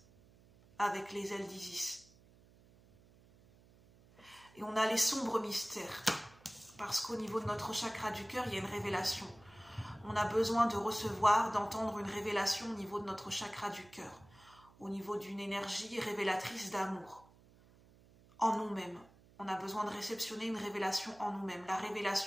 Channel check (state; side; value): noise; right; hum, 26 dB below the sound